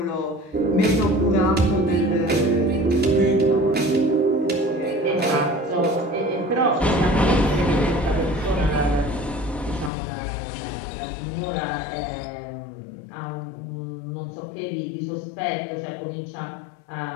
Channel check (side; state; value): right; drops out; at 9.9 s